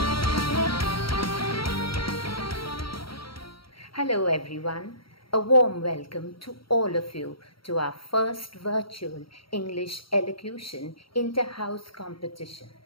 everyone, a warm welcome to all of you to our first virtual English Elocution inter-house competition.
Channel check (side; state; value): right; late; 0.74 ms